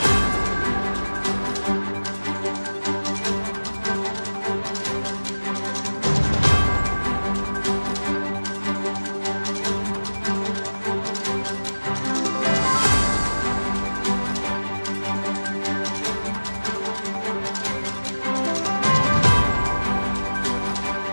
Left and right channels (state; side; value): inverted; both; correlation -1.00